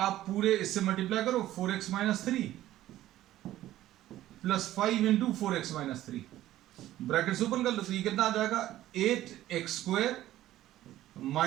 पूरे इससे मल्टीप्लाई करो 4x - 3 + 5 × 4x - 3 ब्रैकेट्स ओपन कर लो. तो ये कितना आ जाएगा 8x² -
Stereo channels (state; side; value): quieter; left; 14.1 dB